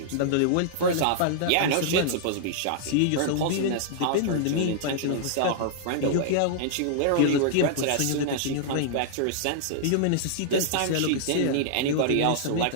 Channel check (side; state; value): both; different; correlation -0.01